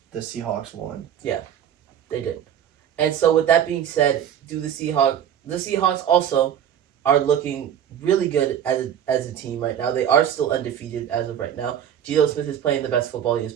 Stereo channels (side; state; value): left; quieter; 9.5 dB